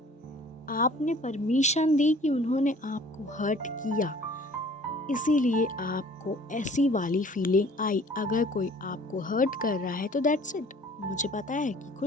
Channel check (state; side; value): normal; both; correlation 0.51